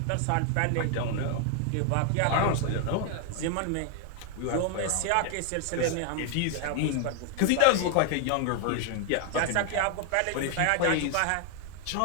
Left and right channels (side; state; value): both; different; correlation 0.00